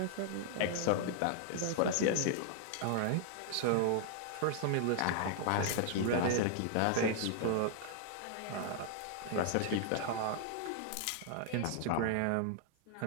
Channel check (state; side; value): different; both; correlation 0.00